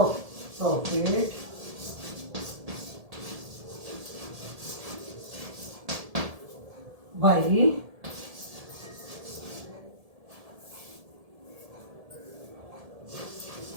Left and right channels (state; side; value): late; left; 1.7 ms